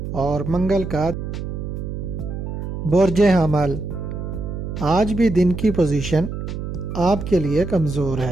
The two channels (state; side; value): noise; right; hum, 6 dB below the sound